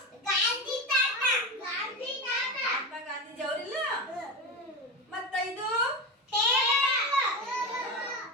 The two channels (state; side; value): normal; both; correlation 0.21